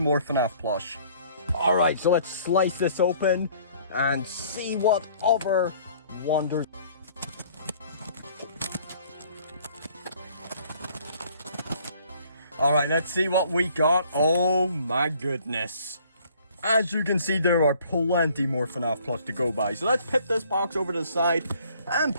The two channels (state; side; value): inverted; both; correlation -0.57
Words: FNAF plush. Alright, so let's slice this open and see what other wonders. Alright, let's see what we got. Oh my goodness. As you can see, there are plenty more FNAF plush to go by. So let's put this box over to the side and